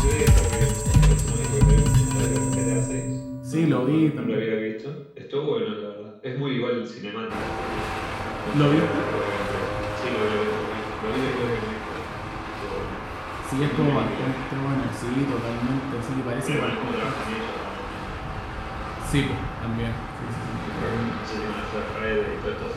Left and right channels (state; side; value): identical; both; correlation 1.00